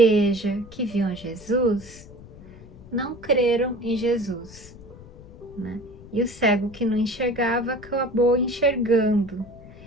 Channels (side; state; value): left; noise; rumble, 19 dB below the sound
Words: que viam Jesus, não creram em Jesus, né? E o cego que não enxergava acabou enxergando,